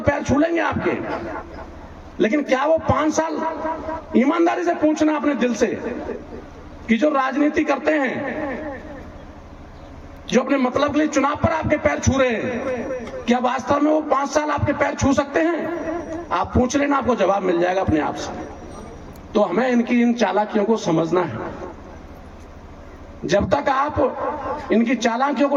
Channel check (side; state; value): both; identical; correlation 1.00